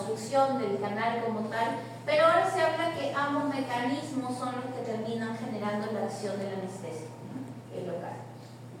del canal como tal, pero ahora se habla que ambos mecanismos son los que terminan generando la acción del anestésico, ¿no? El local.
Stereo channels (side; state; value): both; identical; correlation 1.00